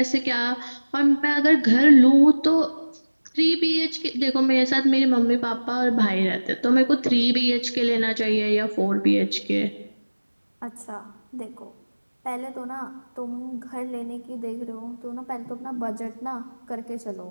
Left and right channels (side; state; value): both; inverted; correlation -1.00